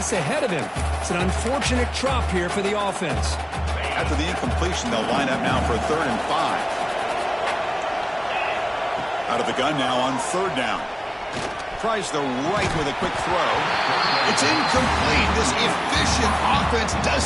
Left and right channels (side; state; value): both; identical; correlation 1.00